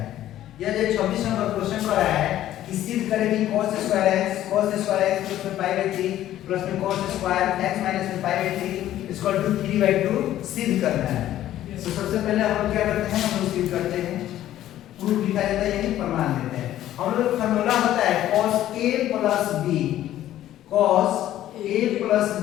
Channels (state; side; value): quieter; right; 12.9 dB